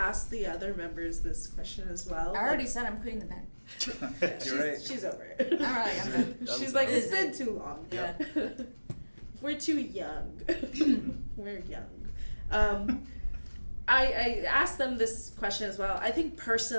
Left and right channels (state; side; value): inverted; both; correlation -1.00